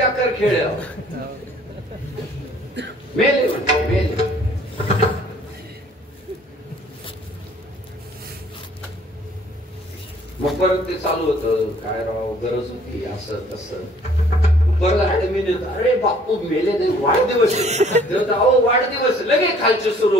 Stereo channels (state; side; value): normal; both; correlation 0.58